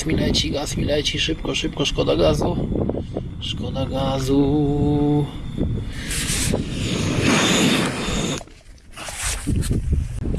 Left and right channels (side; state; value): both; identical; correlation 1.00